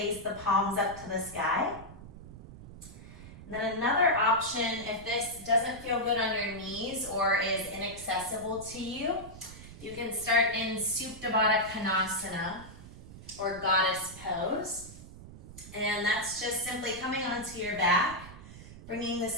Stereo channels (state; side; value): noise; right; rumble, 16 dB below the sound